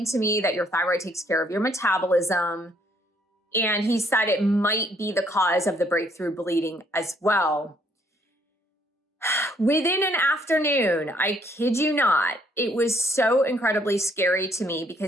to me that your thyroid takes care of your metabolism. And he said it might be the cause of the breakthrough bleeding as well. Within an afternoon, I kid you not, it was so incredibly scary to me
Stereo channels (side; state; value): both; normal; correlation 0.67